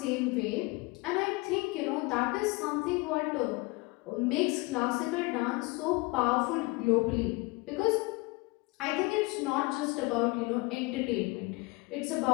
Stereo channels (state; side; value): quieter; right; 25.0 dB